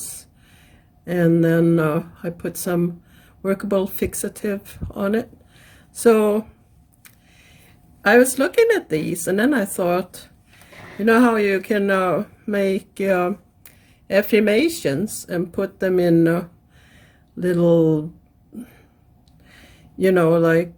and then I put some workable fixative on it. So I was looking at these, and then I thought, you know how you can make affirmations and put them in little,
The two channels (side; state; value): both; identical; correlation 1.00